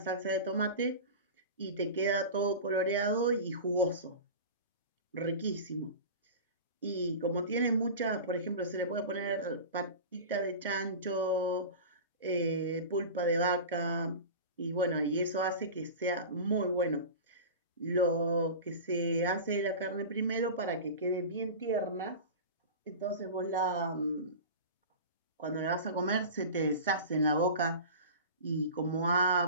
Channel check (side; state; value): both; inverted; correlation -0.32